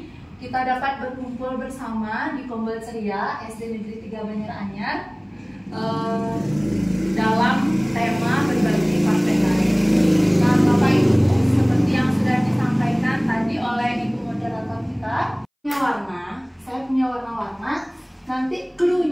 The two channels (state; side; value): identical; both; correlation 1.00